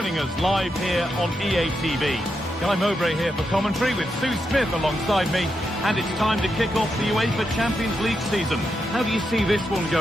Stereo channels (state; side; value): normal; both; correlation 0.85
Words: us live here on EA TV. Guy Mowbray here for commentary with Sue Smith alongside me. And it's time to kick off the UEFA Champions League season. How do you see this one